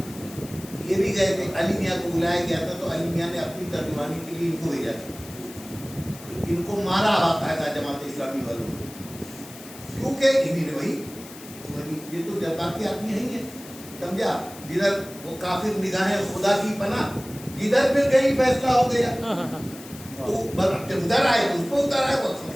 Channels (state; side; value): noise; left; hiss, 17 dB below the sound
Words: یہ بھی گئے تھے, علی میاں کو بلایا گیا تھا تو علی میاں نے اپنی ترجمانی کے لیے ان کو بھیجا تھا. تو ان کو مارا باقاعدہ جماعت اسلامی والوں نے, کیونکہ انہیں نے وہی یہ تو جذباتی آدمی نہیں ہے. سمجھا, جدھر وہ کافر نگاہیں خدا کی پناہ, جدھر پھر گئی فیصلہ ہو گیا تو جب ادھر آئے تو اس کو اتر آئے. وہ